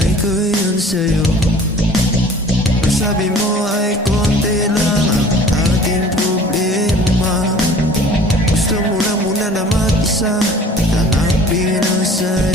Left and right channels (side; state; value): both; normal; correlation 0.48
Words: ko yun sa'yo. Ang sabi mo ay konti lang ang ating problema. Gusto mo lang muna na mag-isa, hanapin ang